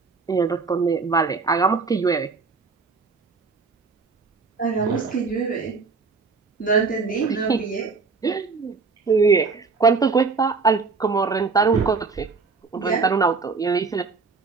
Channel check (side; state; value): left; quieter; 4.6 dB